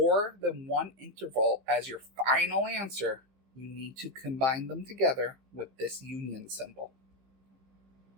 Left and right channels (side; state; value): left; late; 15 ms